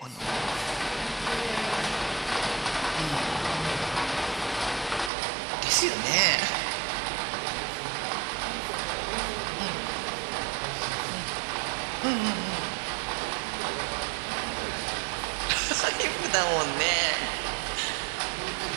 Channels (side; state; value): left; drops out; at 5.1 s